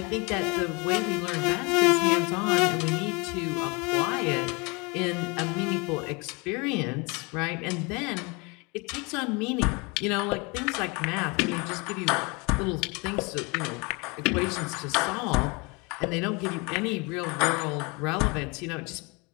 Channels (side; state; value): right; quieter; 28.5 dB